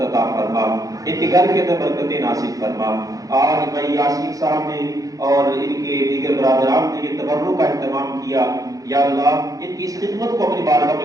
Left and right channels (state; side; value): late; left; 0.17 ms